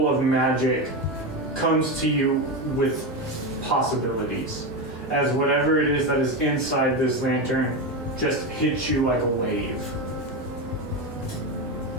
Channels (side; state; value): both; normal; correlation 0.15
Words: of magic comes to you with possibilities, as whatever it is that is inside this lantern just hits you like a wave.